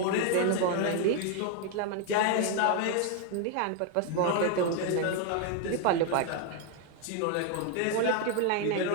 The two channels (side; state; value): both; different; correlation 0.00